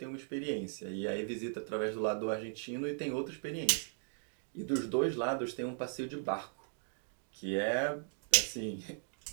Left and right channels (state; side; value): silent; left; digital silence